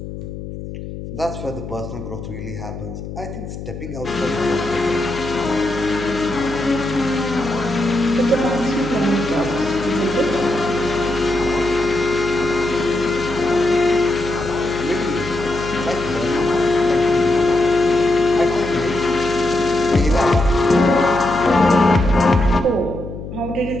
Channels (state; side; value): noise; left; hum, 10 dB below the sound